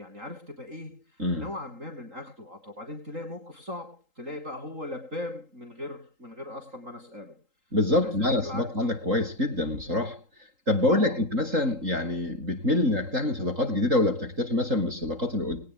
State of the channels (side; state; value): left; late; 3.8 ms